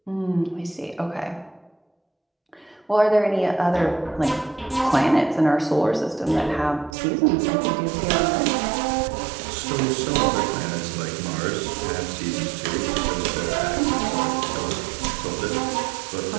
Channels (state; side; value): drops out; left; at 7.0 s